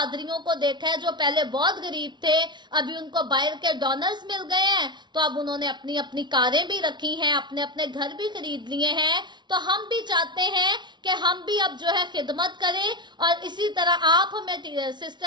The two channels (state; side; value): late; left; 0.21 ms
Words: को देखा है जो पहले बहुत गरीब थे, अभी उनको बाहर के डोनर्स मिल गए हैं, तो अब उन्होंने अपनी अपनी कारें भी रखी हैं, अपने अपने घर भी खरीद लिए हैं। तो हम भी चाहते हैं कि हम भी अब जो है खिदमत करें, और इसी तरह आप हमें